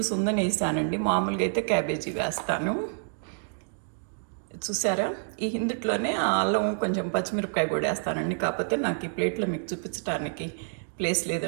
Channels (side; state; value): left; silent; digital silence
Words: ఉందని వేసానండి. మామూలుగా అయితే క్యాబేజీ వేస్తాను. చూసారా, ఇందుట్లోనే అల్లం, కొంచెం పచ్చిమిరపకాయ కూడా వేస్తానండి. కాకపోతే నాకు ఈ ప్లేట్లో మీకు చూపించడానికి ప్లేస్